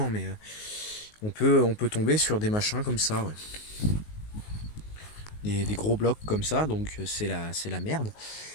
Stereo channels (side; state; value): right; late; 19 ms